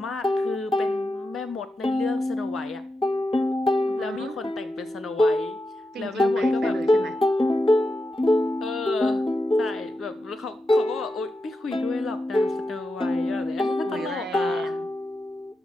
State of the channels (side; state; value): both; normal; correlation 0.88